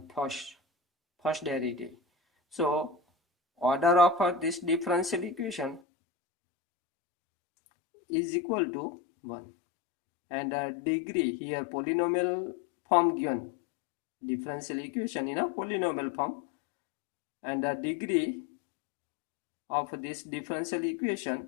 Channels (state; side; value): drops out; right; at 5.8 s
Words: first derivative. So order of this differential equation is equal to 1. And degree here polynomial form given, differential equation in a polynomial form, and the degree of this differential equation